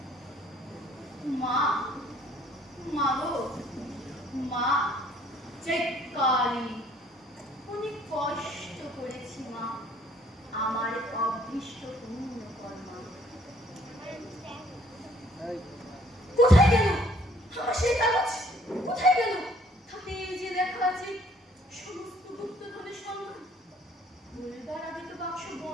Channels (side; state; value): both; normal; correlation 0.61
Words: माँ মাগো মা চেকালি অনেক কষ্ট করেছি মা আমার অভীষ্ট পূর্ণ কর্মা। কোথায় গেল আমার সেই কাগজ? কোথায় গেল? তাতে যে লেখা আছে সমস্ত গুপ্তধনের সংখ্যা। বলবার আগে তো বাক্স